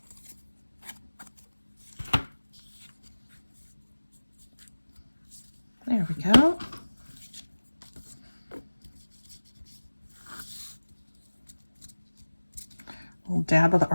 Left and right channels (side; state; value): both; inverted; correlation -1.00